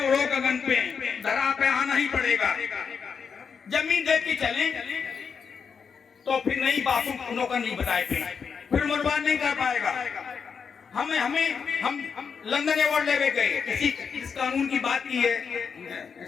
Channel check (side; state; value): right; quieter; 6.3 dB